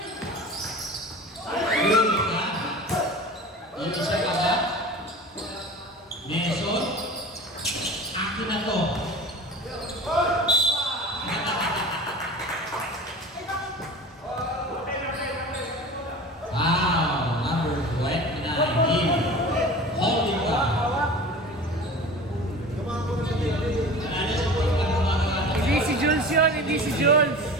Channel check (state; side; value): normal; both; correlation 0.36